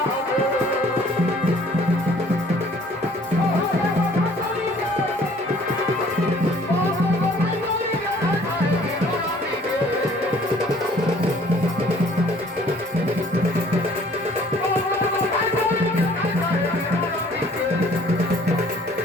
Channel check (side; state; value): both; normal; correlation 0.56